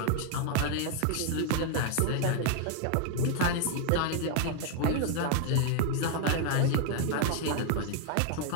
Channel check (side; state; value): both; different; correlation 0.00